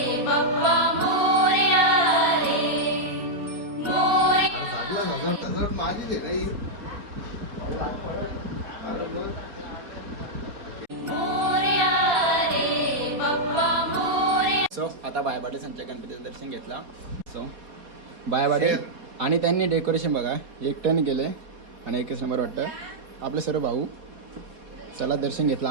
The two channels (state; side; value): late; left; 4.2 ms